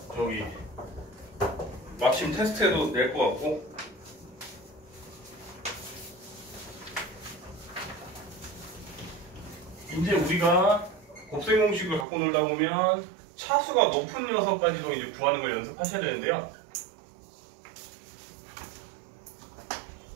마침 테스트에도 낼 것 같고, 이제 우리가 곱셈 공식을 갖고 놀다 보면 차수가 높은 녀석까지도 이제 구하는 걸 연습하셔야 되는데요.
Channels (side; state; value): left; drops out; at 12.1 s